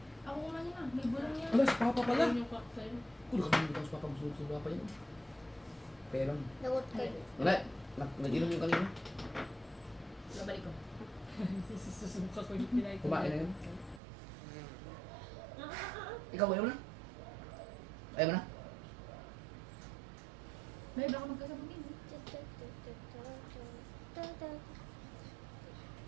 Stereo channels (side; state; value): left; drops out; at 14.0 s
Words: Ako kumain na. May bulong niya. Wala, si Papa pala. Ayan yung cocktail. Kung kami dito sa Papa, gusto sa Papa yun. Kaya lang. Lagot ka. Wala, nag-inom yung kanina. Babalik ko. Susuka ko yung pinay ko. Kumain na yun. Ikaw, ayaw mo na? Ayaw mo na? May baka magkasabungin.